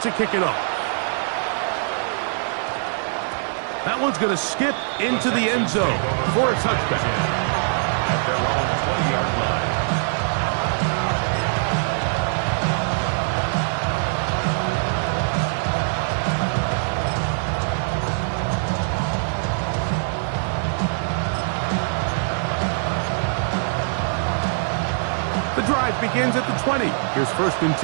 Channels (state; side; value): silent; left; digital silence